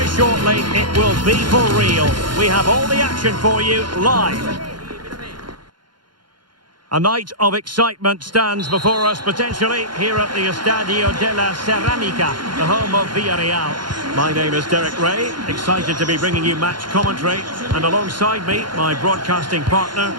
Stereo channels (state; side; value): late; left; 0.71 ms